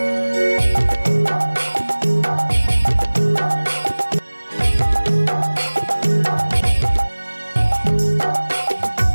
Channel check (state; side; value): inverted; both; correlation -1.00